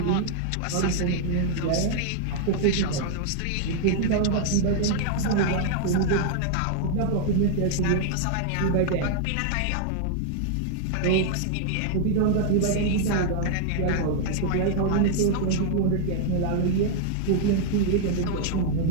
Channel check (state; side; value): different; both; correlation 0.00